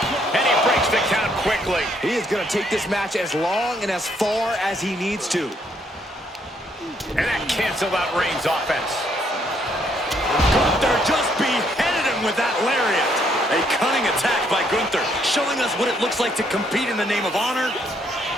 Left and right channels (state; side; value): normal; both; correlation 0.70